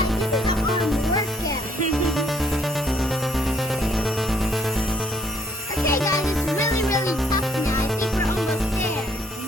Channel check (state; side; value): normal; both; correlation 0.65